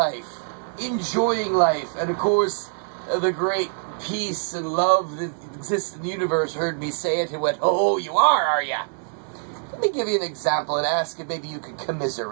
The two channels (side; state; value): left; silent; 62 dB below the other